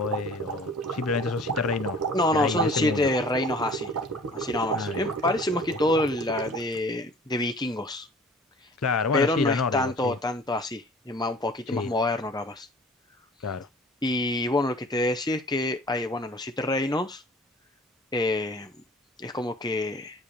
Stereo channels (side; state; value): both; normal; correlation 0.48